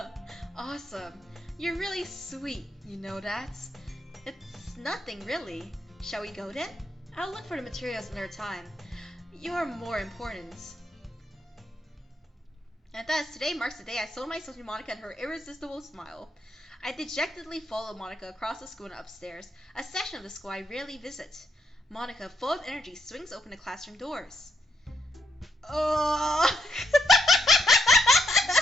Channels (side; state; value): both; normal; correlation 0.77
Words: Awesome. You're really sweet, you know that? It's nothing, really. Shall we go then? I'll look for the materials another time. You're more important. And thus, today marks the day I sold myself to Monica and her irresistible smile. I dejectedly followed Monica across the school and upstairs, a section of the school I rarely visit. Monica, full of energy, swings open the classroom doors. Oh!